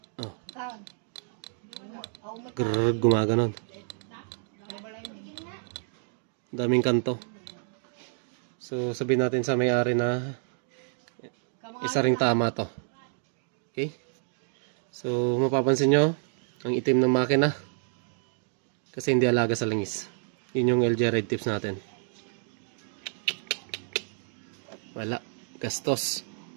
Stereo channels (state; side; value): silent; left; 58 dB below the other